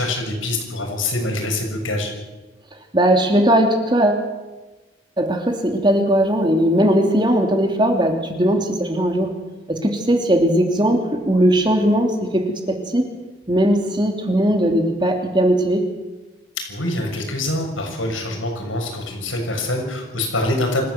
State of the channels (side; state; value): both; normal; correlation 0.64